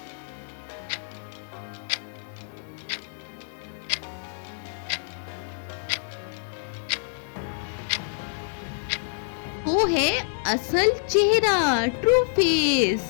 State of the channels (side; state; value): right; silent; digital silence